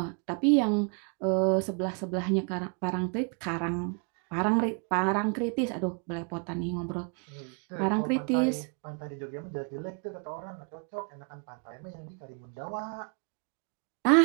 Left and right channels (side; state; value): left; quieter; 37.9 dB